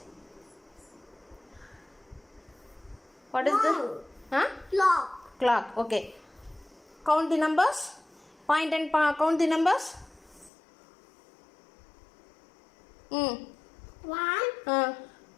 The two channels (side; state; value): right; drops out; at 10.5 s